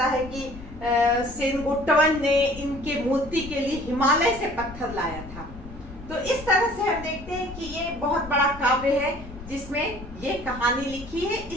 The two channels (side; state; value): left; noise; rumble, 15 dB below the sound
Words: है कि सेनगुट्टवन ने इनके मूर्ति के लिए हिमालय से पत्थर लाया था। तो इस तरह से हम देखते हैं कि ये बहुत बड़ा काव्य है जिसमें ये कहानी लिखी है।